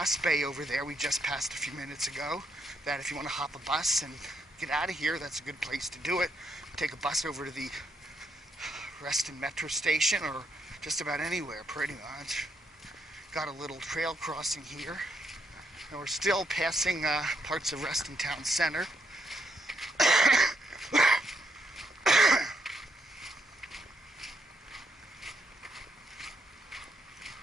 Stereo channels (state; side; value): normal; both; correlation 0.78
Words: bay over there we just passed a few minutes ago, that if you want to hop a bus and get out of here, that's a good place to do it. Take a bus over to the Reston Metro Station or just about anywhere, pretty much. Got a little trail crossing here, and we're still passing parts of Reston Town Center.